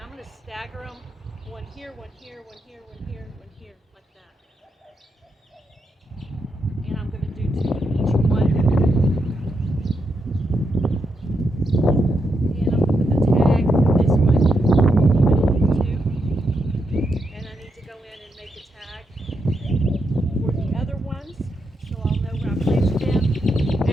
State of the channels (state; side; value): normal; both; correlation 0.82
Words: I'm going to stagger them, one here, one here, one here, one here, one here, like that, and I'm going to do two of each one, and I'm going to put the tag for this one in the middle of the two, and I need to go in and make a tag for the other ones, so I'll know where I placed them.